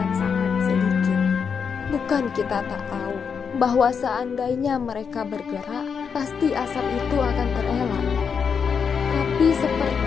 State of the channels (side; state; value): right; quieter; 6.4 dB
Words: sangat sedikit. Bukan kita tak tahu bahwa seandainya mereka bergerak, pasti asap itu akan terelak. Tapi